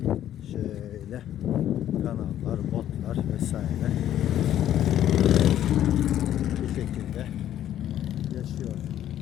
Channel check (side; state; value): right; quieter; 11.5 dB